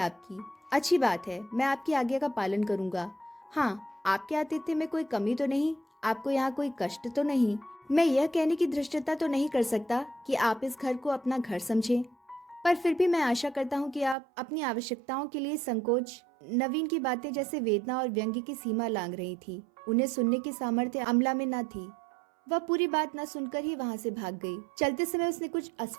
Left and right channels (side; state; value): left; drops out; at 14.2 s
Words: अच्छी बात है, मैं आपकी आज्ञा का पालन करूंगा। हाँ, आपके आतिथ्य में कोई कमी तो नहीं? आपको यहाँ कोई कष्ट तो नहीं? मैं यह कहने की धृष्टता तो नहीं कर सकता कि आप इस घर को अपना घर समझें, पर फिर भी मैं आशा करता हूँ कि आप अपनी आवश्यकताओं के लिए संकोच। नवीन की बातें जैसे वेदना और व्यंग्य की सीमा लांघ रही थी। उन्हें सुनने की सामर्थ्य अमला में न थी। वह पूरी बात न सुनकर ही वहाँ से भाग गई। चलते समय उसने कुछ